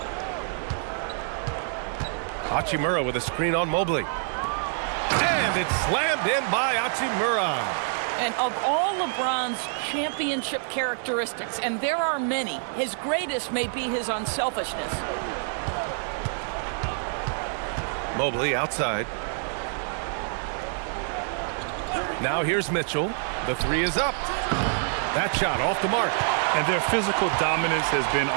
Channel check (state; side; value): silent; left; 60 dB below the other